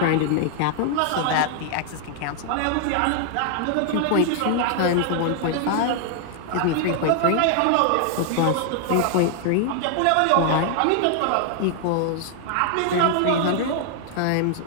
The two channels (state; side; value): different; both; correlation 0.00